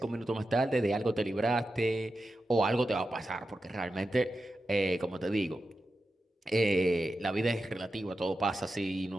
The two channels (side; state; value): both; normal; correlation 0.91